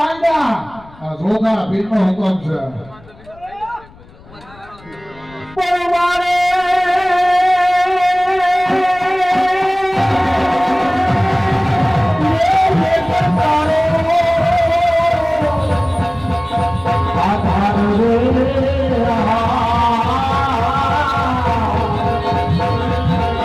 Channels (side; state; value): left; noise; rumble, 24 dB below the sound